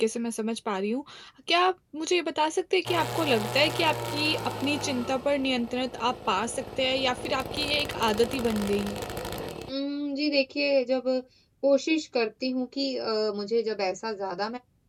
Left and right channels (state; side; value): identical; both; correlation 1.00